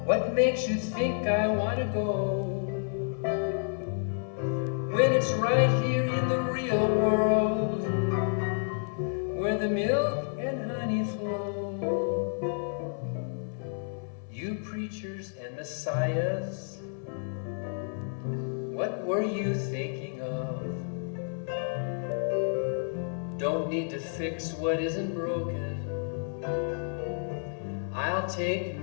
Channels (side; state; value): right; silent; digital silence